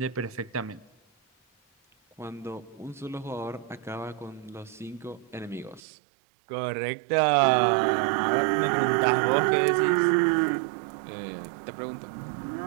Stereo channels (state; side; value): drops out; left; at 5.8 s